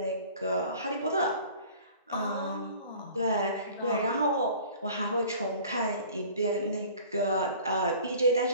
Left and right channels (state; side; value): inverted; both; correlation -0.47